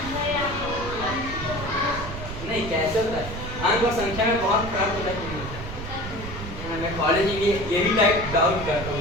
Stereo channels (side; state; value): right; noise; rumble, 9 dB below the sound